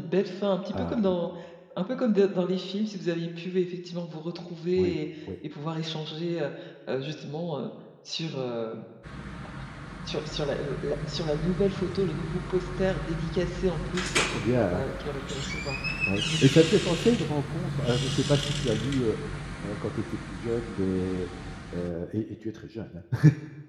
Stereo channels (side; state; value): both; identical; correlation 1.00